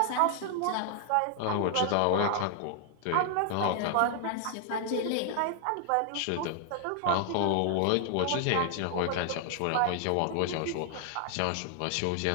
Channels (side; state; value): both; different; correlation 0.00